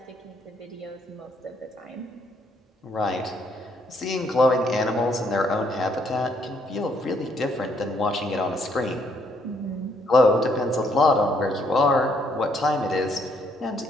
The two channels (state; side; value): normal; both; correlation 0.70